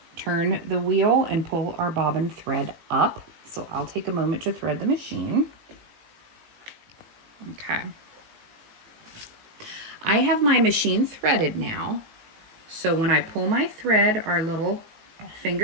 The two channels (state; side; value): late; left; 18 ms